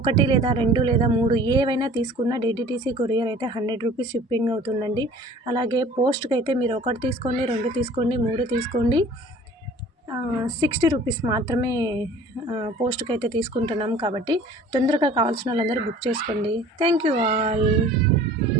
1 లేదా 2 లేదా 3 ఏవైనా తీసుకున్న డిడిటీసీ కొరియర్ అయితే 100 రూపీస్ షిప్పింగ్ అవుతుందండి. అలాగే పోస్ట్కి అయితే మీరు 1 తీసుకోండి, 2 తీసుకోండి, 3 తీసుకోండి, 60 రూపీస్ మాత్రమే పోస్ట్కి అయితే తీసుకుంటున్నాం. కాబట్టి తొందరగా కావాల్సిన వాళ్ళందరూ బుక్ చేసుకోండి. Thank you all.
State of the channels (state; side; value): normal; both; correlation 0.48